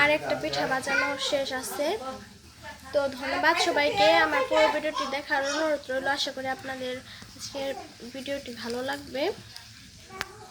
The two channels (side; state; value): both; identical; correlation 1.00